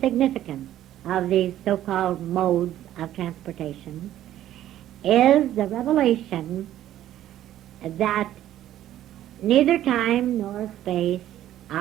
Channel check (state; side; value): quieter; left; 12.6 dB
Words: significance of these so-called modes of transportation is the revelation that neither time nor space